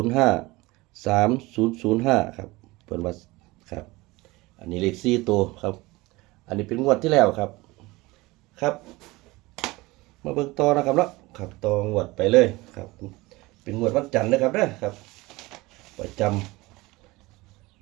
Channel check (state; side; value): quieter; left; 21.4 dB